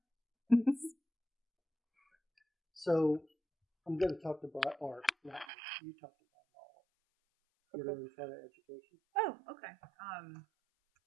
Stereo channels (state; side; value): drops out; left; at 5.5 s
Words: So I'm going to talk about art. You talked about all. You're in front of education. Oh, okay.